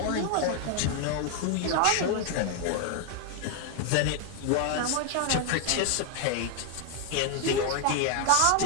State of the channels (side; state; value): both; different; correlation 0.00